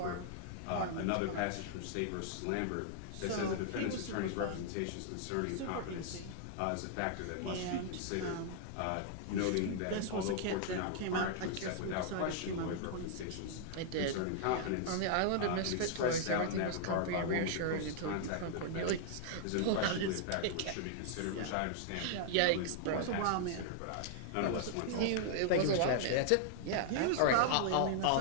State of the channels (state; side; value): different; both; correlation -0.01